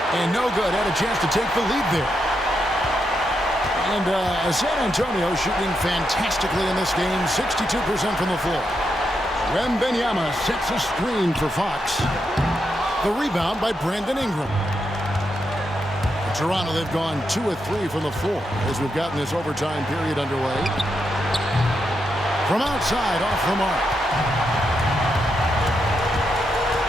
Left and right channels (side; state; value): both; normal; correlation 0.83